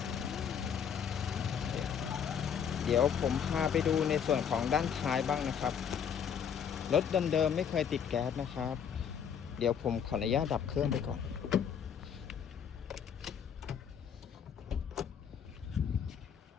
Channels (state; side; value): quieter; right; 7.8 dB